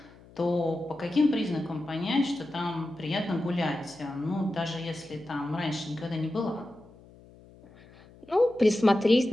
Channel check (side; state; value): left; noise; hum, 24 dB below the sound